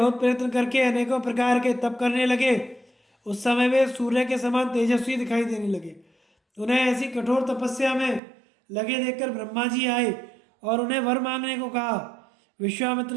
प्रयत्न करके अनेकों प्रकार के तप करने लगे, उस समय वे सूर्य के समान तेजस्वी दिखाई देने लगे। उन्हें ऐसी कठोर तपस्या में लगे देखकर ब्रह्मा जी आए और उन्हें वर मांगने को कहा। विश्वामित्र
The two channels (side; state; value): left; drops out; at 8.2 s